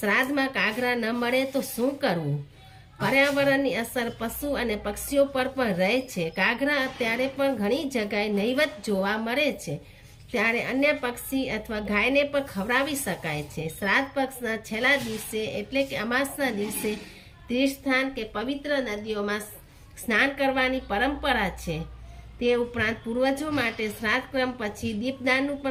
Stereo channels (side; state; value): both; identical; correlation 1.00